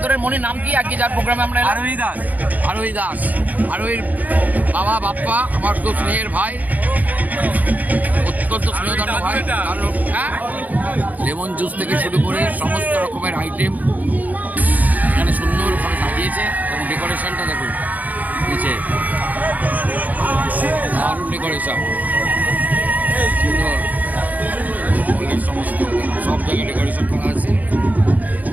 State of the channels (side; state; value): left; late; 0.079 ms